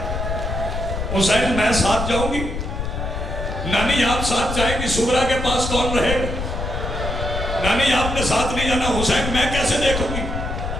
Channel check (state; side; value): noise; left; rumble, 4 dB below the sound